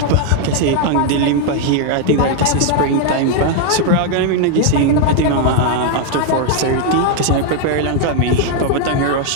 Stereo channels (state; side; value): different; both; correlation 0.00